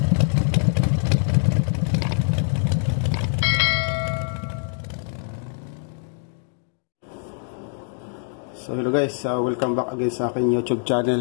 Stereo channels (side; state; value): right; silent; 58 dB below the other